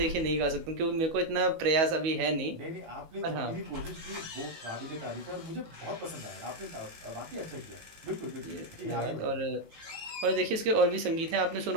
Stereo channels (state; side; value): late; left; 18 ms